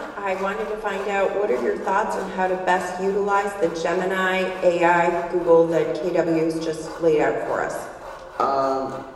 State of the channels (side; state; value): both; identical; correlation 1.00